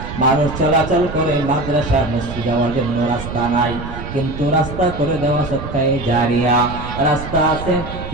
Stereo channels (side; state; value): right; noise; rumble, 9 dB below the sound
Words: মানুষ চলাচল করে, মাদ্রাসা মসজিদ যাওয়ার জন্য রাস্তা নাই, কিন্তু রাস্তা করে দেওয়া সদকায়ে জারিয়া। রাস্তা আছে